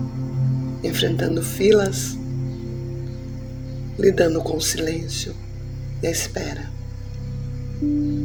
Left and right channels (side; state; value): both; identical; correlation 1.00